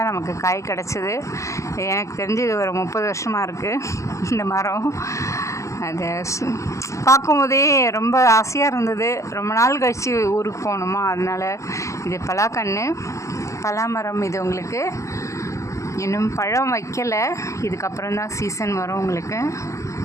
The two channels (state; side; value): late; right; 0.15 ms